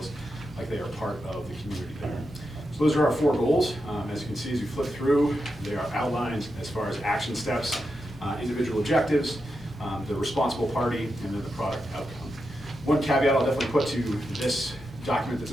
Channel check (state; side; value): normal; both; correlation 0.87